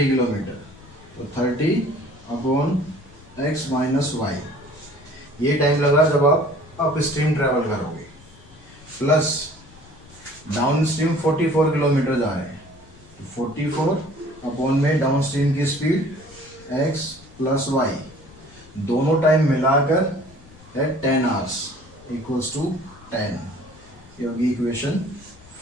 किलोमीटर, तो 30 अपॉन x माइनस वाई, ये टाइम लगा जब आप अप स्ट्रीम ट्रैवल करोगे। प्लस डाउन स्ट्रीम 44 किलोमीटर जा रहे हैं, 44 अपॉन में डाउन स्ट्रीम की स्पीड x प्लस वाई, दोनों टाइम मिलाकर है 10 आवर्स इक्वल्स टू 10, ये होगी इक्वेशन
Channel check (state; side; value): noise; left; rumble, 23 dB below the sound